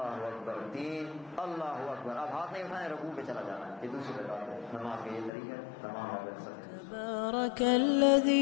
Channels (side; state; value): right; drops out; at 5.3 s